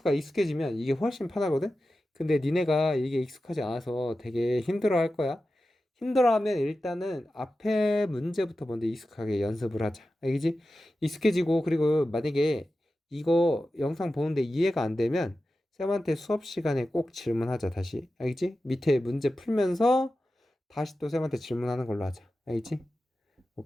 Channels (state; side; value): normal; both; correlation 0.93